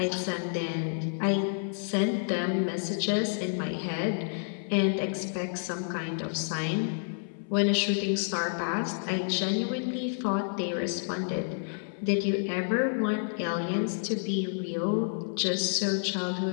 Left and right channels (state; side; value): silent; right; 58 dB below the other